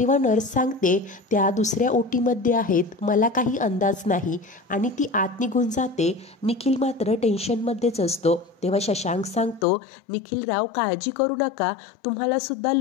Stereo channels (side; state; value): right; drops out; at 9.7 s